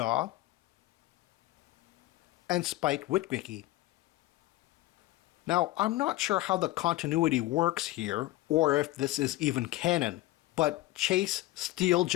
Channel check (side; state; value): right; quieter; 17.5 dB